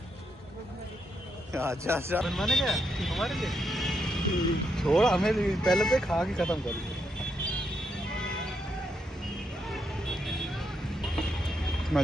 अच्छा अच्छा बनवाने क्या हमारे लिए? छोड़ हमें भी, पहले तो खा के खत्म कर।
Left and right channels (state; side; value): normal; both; correlation 0.80